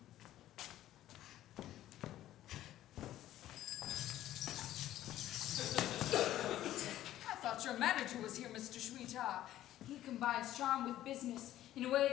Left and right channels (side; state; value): right; quieter; 13.4 dB